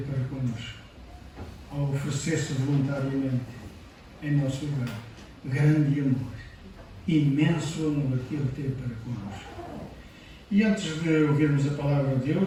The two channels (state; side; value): identical; both; correlation 1.00